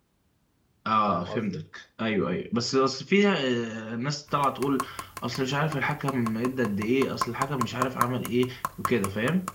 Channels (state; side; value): identical; both; correlation 1.00